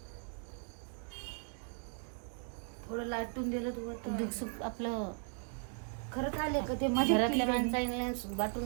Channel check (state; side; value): silent; left; 53 dB below the other